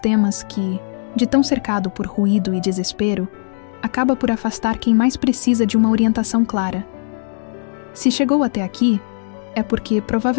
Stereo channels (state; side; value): silent; right; 67 dB below the other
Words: que, de tão cercado por ruído e desespero, acaba por afastar quem mais precisa de uma orientação clara. Se chegou até aqui, é porque